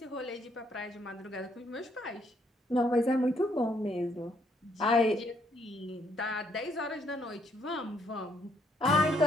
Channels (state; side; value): normal; both; correlation 0.70